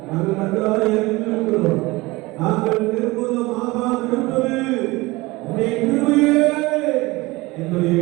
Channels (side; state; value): left; quieter; 21.7 dB